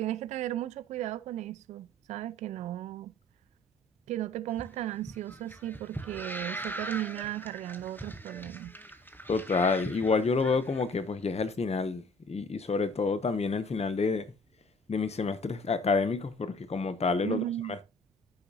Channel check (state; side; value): normal; both; correlation 0.52